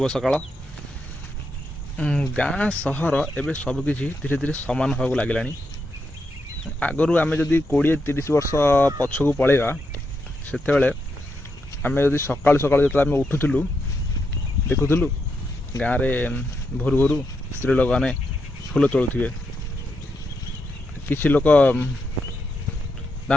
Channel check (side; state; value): both; normal; correlation 0.83